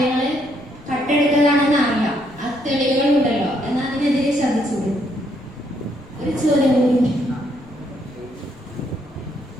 കട്ടെടുക്കലാണെന്ന് അറിയാം, ആ തെളിവുകൾ ഉണ്ടല്ലോ, എന്നാൽ അതിനെതിരെ ശ്രദ്ധിച്ചൂടെ? ഒരു ചോദ്യം കൂടി.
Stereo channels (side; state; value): left; noise; rumble, 23 dB below the sound